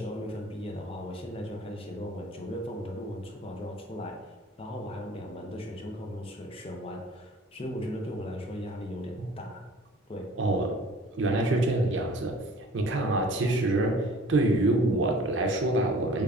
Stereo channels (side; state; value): both; normal; correlation 0.49